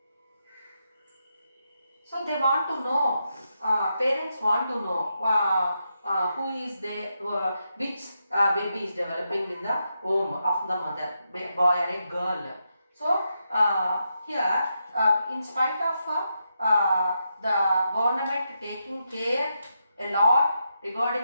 So they want to know, parents want to know who is there, which baby is developing in the womb of the mother, boy or a girl. So here, in spite of the government taking care a lot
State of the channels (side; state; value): both; inverted; correlation -0.84